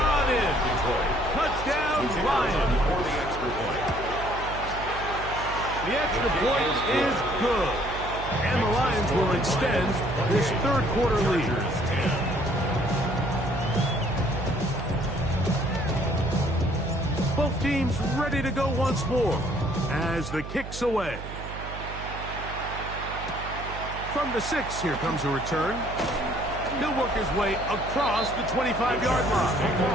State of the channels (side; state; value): right; noise; hum, 10 dB below the sound